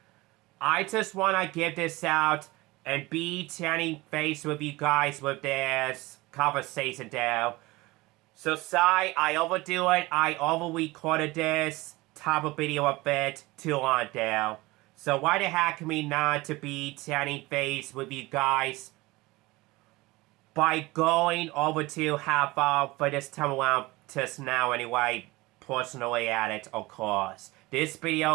I just want to give this out and be chatting face with you guys with this conversation there. So sorry, I overdo it. I over-recorded this type of video a bit too long there. So why the heck me not to be chatting face with you guys by going over to half hour for this time around just now anyway, personally at it, of course. This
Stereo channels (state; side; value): quieter; left; 21.2 dB